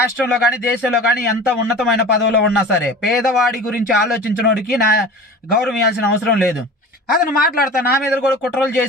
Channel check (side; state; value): both; normal; correlation 0.37